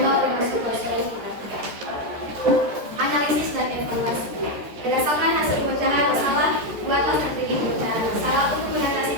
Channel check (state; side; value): late; left; 13 ms